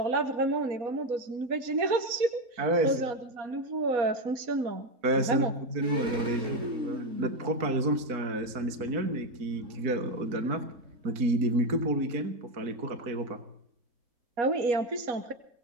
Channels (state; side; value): late; left; 4.5 ms